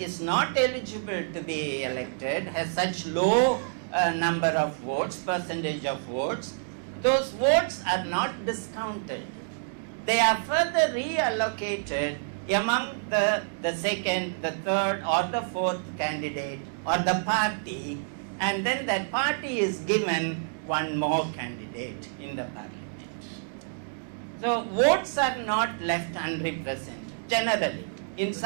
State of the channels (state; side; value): silent; left; digital silence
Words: is not eligible to be elected has such low number of votes, percentage of votes, those votes are not discounted. They are further reallocated among the second, the third or the fourth candidate or the party, and then that party is given one more candidate in the parliament. So votes are not left unrepresented generally. In